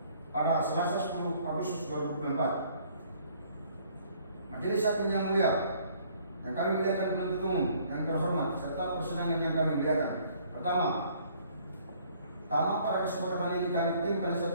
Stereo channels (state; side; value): inverted; both; correlation -0.60